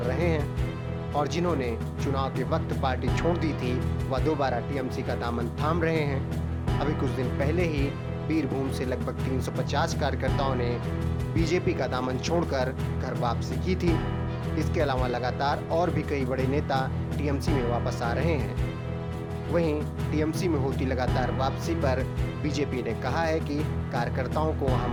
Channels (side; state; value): both; identical; correlation 1.00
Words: रहे हैं और जिन्होंने चुनाव के वक्त पार्टी छोड़ दी थी वह दोबारा टीएमसी का दामन थाम रहे हैं। अभी कुछ दिन पहले ही बीरभूम से लगभग 350 कार्यकर्ताओं ने बीजेपी का दामन छोड़कर घर वापसी की थी। इसके अलावा लगातार और भी कई बड़े नेता टीएमसी में वापस आ रहे हैं। वहीं टीएमसी में होती लगातार वापसी पर बीजेपी ने कहा है कि कार्यकर्ताओं को